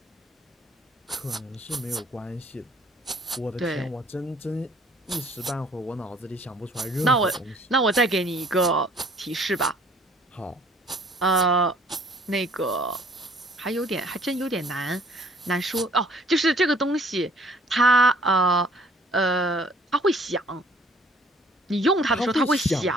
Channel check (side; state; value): both; normal; correlation 0.57